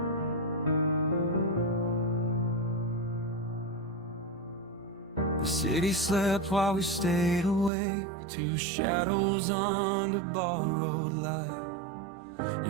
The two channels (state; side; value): drops out; left; at 7.7 s